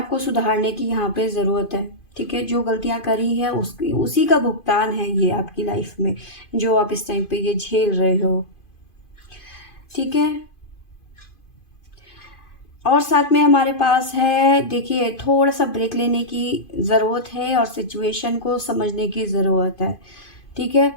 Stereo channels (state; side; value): late; right; 2.5 ms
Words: को सुधारने की यहाँ पे ज़रूरत है। ठीक है, जो गलतियाँ करी है उसी का भुगतान है ये आपकी लाइफ में, जो आप इस टाइम पे ये झेल रहे हो। ठीक है, और साथ में हमारे पास है, देखिए थोड़ा सा ब्रेक लेने की ज़रूरत है और सिचुएशन को समझने की ज़रूरत है। ठीक है,